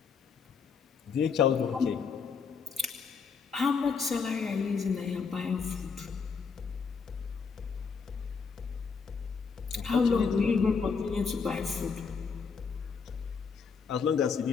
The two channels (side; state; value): right; quieter; 5.6 dB